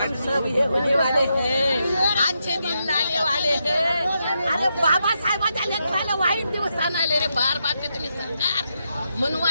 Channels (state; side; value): inverted; both; correlation -0.83